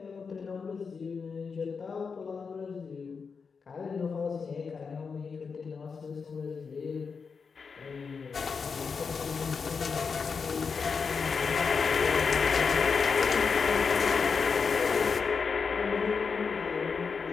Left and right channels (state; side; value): quieter; right; 5.4 dB